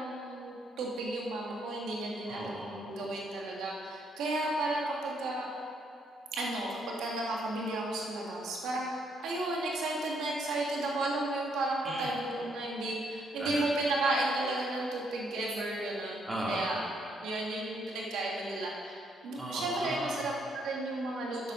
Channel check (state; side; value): normal; both; correlation 0.72